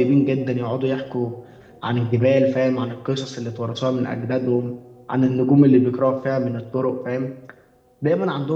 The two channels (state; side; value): identical; both; correlation 1.00